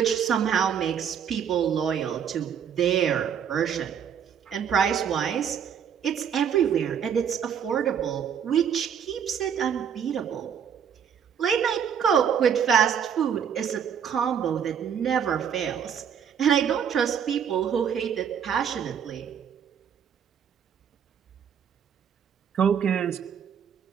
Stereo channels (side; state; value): left; quieter; 8.0 dB